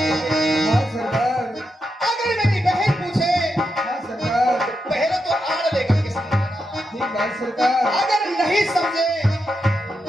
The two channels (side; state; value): both; normal; correlation 0.85